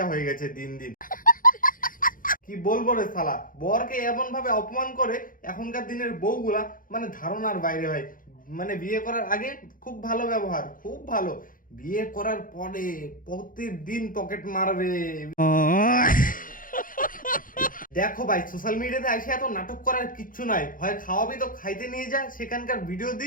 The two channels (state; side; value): late; right; 0.40 ms